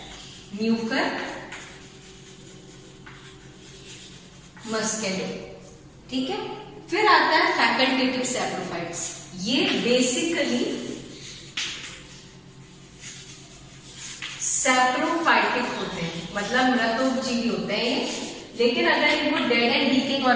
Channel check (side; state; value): both; identical; correlation 1.00